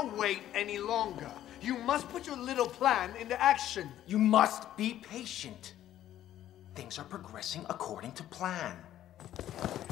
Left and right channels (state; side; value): quieter; right; 12.2 dB